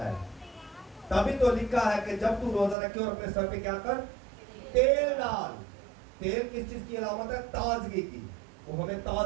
تبھی تو لکھا ہے کہ جب تو روزہ رکھے اور اپنے سر پہ کیا کر؟ تیل ڈال۔ تیل کس چیز کی علامت ہے؟ تازگی کی۔ وہ ہمیں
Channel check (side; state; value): left; drops out; at 2.8 s